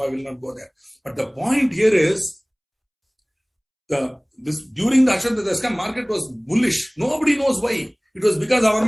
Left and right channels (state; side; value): identical; both; correlation 1.00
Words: I will not go there. But the point here is, during the Harshad Mehta scam, market was bullish. Nobody knows why. It was because our